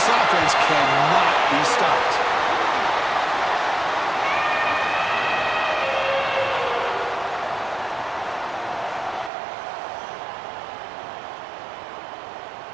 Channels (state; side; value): drops out; left; at 9.3 s